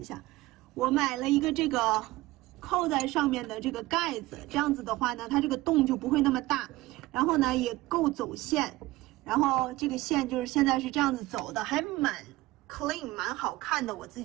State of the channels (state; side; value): quieter; left; 18.8 dB